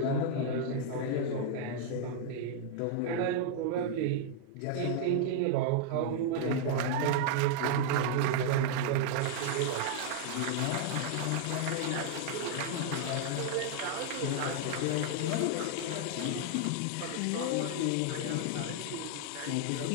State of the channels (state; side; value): different; both; correlation -0.01